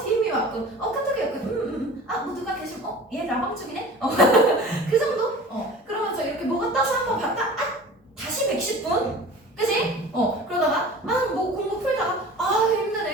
DM이 왔군. 카톡이 왔군. 뭐 누가 계시면 얘 라방 중이네? 그 정도? 그러면서 이렇게 뭐가 떠서 한번 봤다? 다시 110분? 그치? 그러다가 뭐 공부 풀다가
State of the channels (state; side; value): normal; both; correlation 0.40